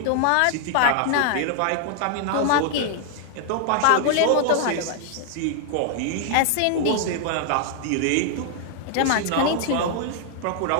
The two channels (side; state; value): both; different; correlation 0.00